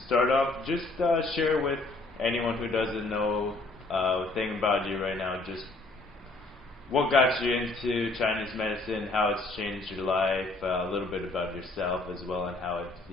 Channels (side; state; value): right; quieter; 3.2 dB